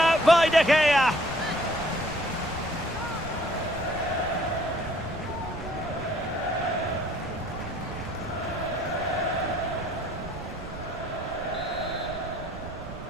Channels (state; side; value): noise; right; rumble, 11 dB below the sound